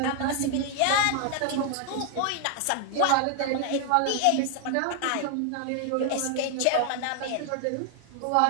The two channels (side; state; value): both; different; correlation 0.00